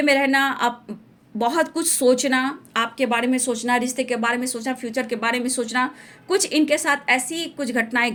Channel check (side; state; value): both; identical; correlation 1.00